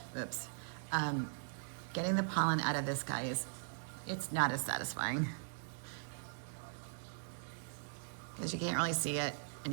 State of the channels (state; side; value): silent; left; digital silence